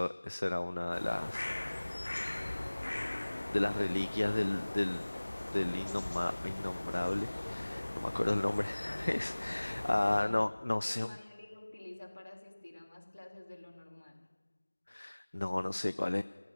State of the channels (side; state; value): both; inverted; correlation -1.00